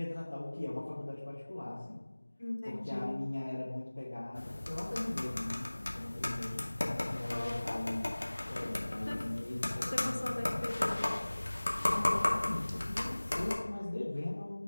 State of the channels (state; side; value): inverted; both; correlation -1.00